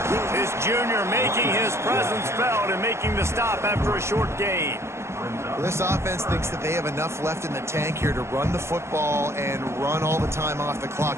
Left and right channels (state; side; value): late; left; 0.13 ms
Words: This junior making his presence felt and making the stop after a short gain. Well, this offense thinks that they have enough left in the tank here to run the football and run all the time off the clock.